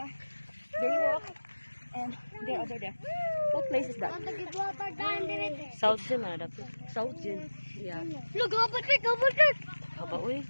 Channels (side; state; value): both; inverted; correlation -1.00